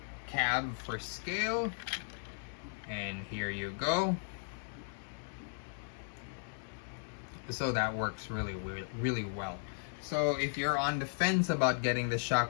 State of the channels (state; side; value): silent; right; digital silence